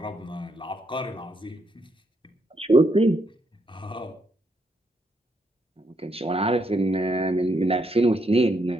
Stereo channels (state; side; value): normal; both; correlation 0.76